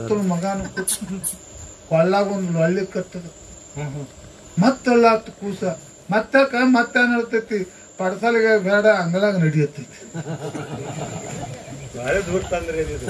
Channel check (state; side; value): identical; both; correlation 1.00